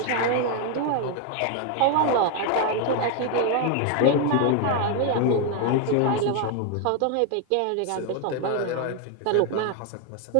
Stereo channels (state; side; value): different; both; correlation 0.01